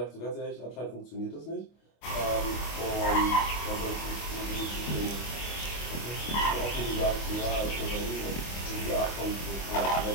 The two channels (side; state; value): right; late; 25 ms